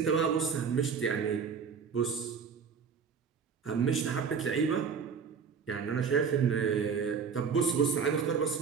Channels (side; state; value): left; quieter; 6.2 dB